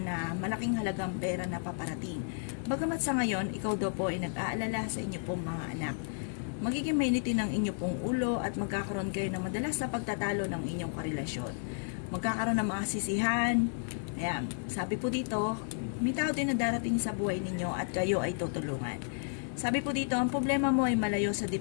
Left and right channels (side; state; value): right; silent; digital silence